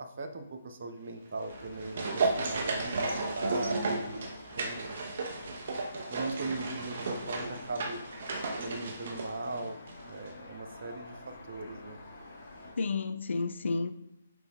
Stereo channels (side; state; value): both; inverted; correlation -0.75